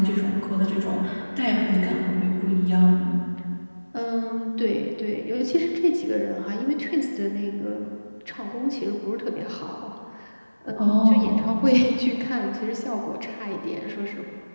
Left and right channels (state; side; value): inverted; both; correlation -1.00